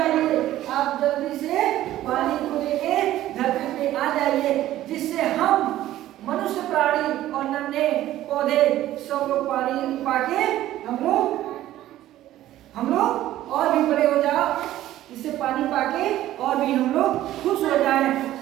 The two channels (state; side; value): quieter; left; 14.0 dB